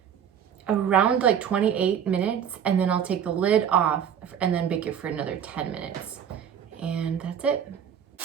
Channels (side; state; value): left; quieter; 8.6 dB